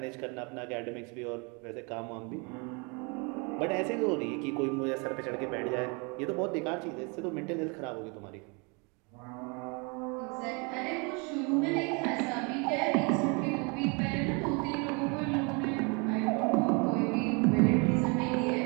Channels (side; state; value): left; quieter; 32.0 dB